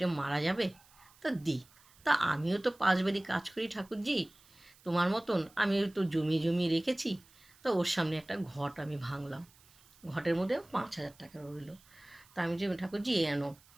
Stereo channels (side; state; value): right; noise; hiss, 28 dB below the sound